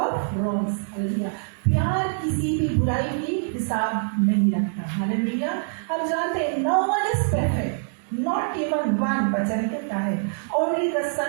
wrongs, hallelujah. प्यार किसी भी बुराई की हिसाब नहीं रखता, हालेलुया। हम जानते हैं no one is perfect, not even one, वचन कहता है only the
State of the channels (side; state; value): left; silent; digital silence